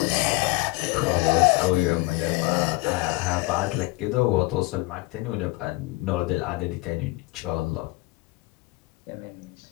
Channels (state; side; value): quieter; right; 22.1 dB